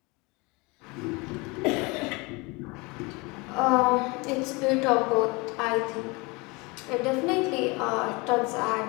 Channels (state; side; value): quieter; right; 26.4 dB